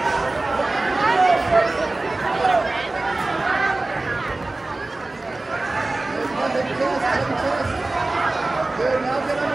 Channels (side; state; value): left; quieter; 3.0 dB